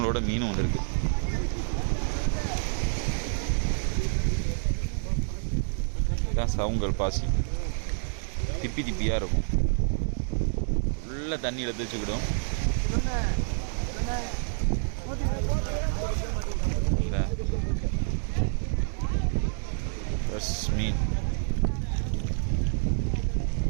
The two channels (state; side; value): silent; left; digital silence